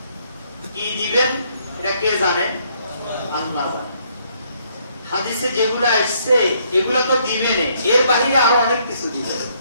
কি দিবেন এটা কে জানেন? আল্লাহ জানেন। হাদিসে যেগুলো আসছে এগুলো তো দিবেন, এর বাইরে আরো অনেক কিছু দিবেন।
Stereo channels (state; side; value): inverted; both; correlation -0.69